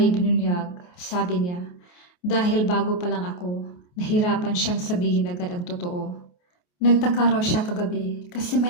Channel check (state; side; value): late; right; 28 ms